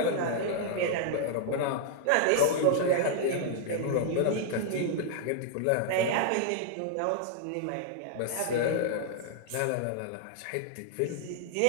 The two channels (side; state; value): both; different; correlation -0.01